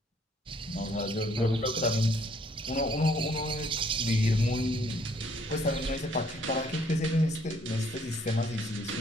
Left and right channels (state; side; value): normal; both; correlation 0.64